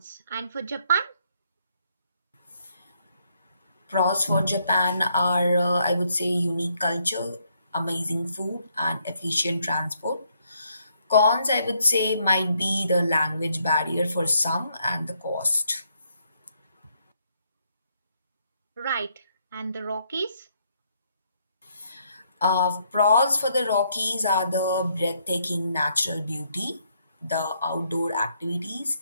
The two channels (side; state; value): both; inverted; correlation -0.73